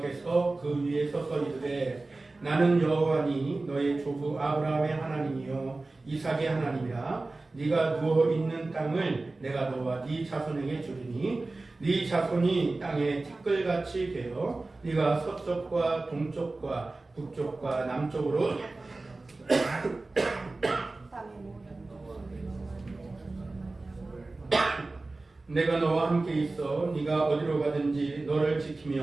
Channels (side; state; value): left; quieter; 3.2 dB